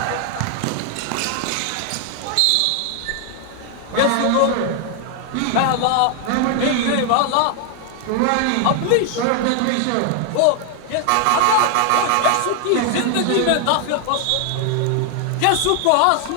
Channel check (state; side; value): different; both; correlation 0.00